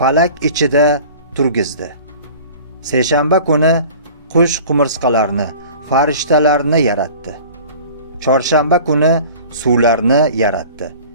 ichida turgizdi. Seshanba kuni qush qumursqalarni, farishtalarni yaratdi. Chorshanba kuni suvlarni yaratdi,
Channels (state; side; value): inverted; both; correlation -0.43